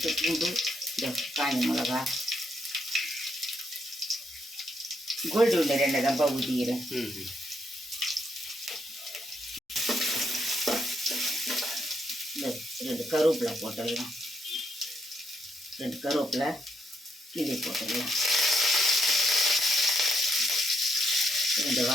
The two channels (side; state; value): both; normal; correlation 0.77